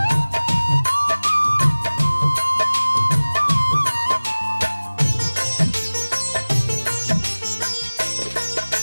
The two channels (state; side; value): inverted; both; correlation -1.00